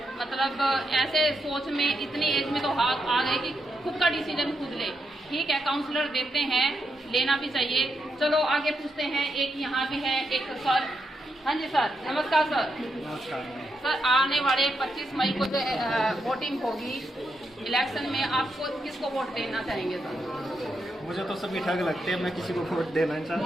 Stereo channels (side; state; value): both; normal; correlation 0.82